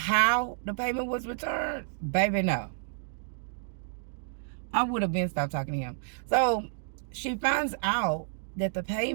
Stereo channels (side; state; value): left; silent; digital silence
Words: the payment was returned, baby, no. I would have been stopped talking to him. So she finds out that the